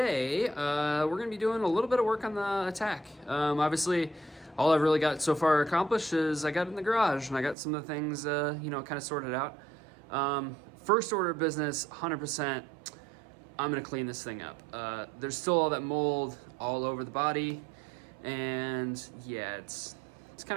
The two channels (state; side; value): drops out; left; at 7.6 s